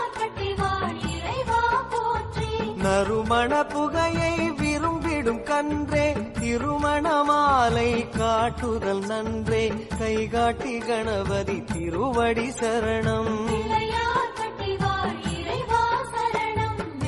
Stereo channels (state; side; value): identical; both; correlation 1.00